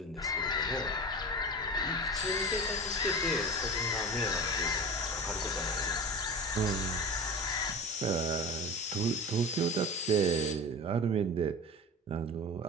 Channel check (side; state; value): both; normal; correlation 0.31